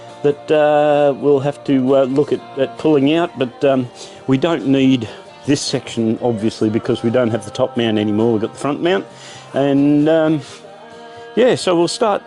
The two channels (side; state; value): both; identical; correlation 1.00